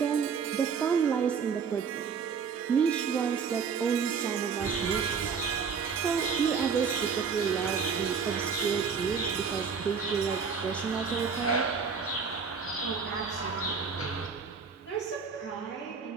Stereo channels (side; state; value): left; quieter; 6.0 dB